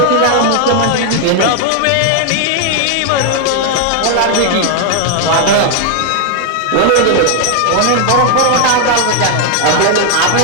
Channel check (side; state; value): both; different; correlation 0.00